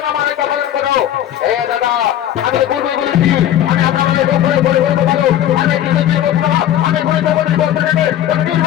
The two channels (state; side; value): quieter; right; 11.5 dB